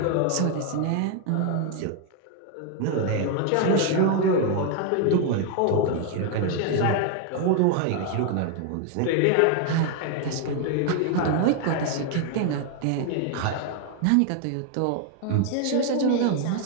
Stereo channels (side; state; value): both; different; correlation 0.00